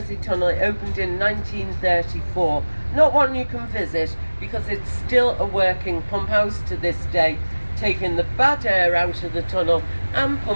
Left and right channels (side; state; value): both; inverted; correlation -1.00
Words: tunnel, it opened in 1934. Not one you can visit because it's still a working pump house to this day, taking the bad air out of the tunnel and